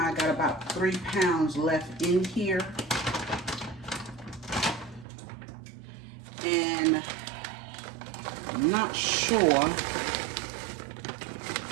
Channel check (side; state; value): left; drops out; at 5.1 s